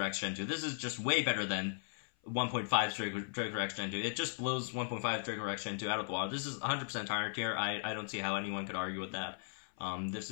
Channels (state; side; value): silent; right; 53 dB below the other